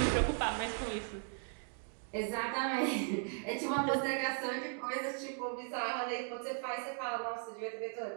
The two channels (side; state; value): left; silent; 53 dB below the other